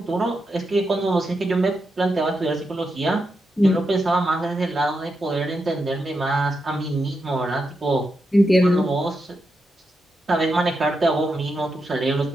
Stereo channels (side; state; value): both; normal; correlation 0.85